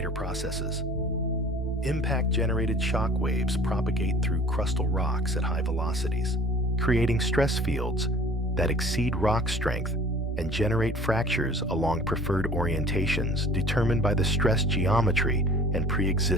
processes. Impact-generated shock waves propagate through crustal rocks at high velocities, creating stress fields that exceed rock strength and generate fractures along preferred orientations determined by the stress geometry and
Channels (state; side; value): normal; both; correlation 0.47